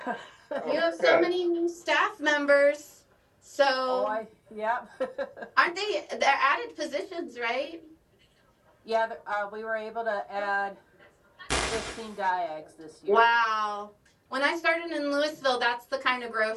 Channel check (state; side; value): identical; both; correlation 1.00